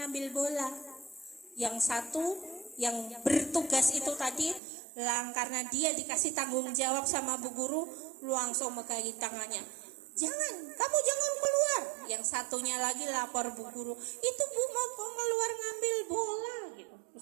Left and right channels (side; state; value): left; drops out; at 4.6 s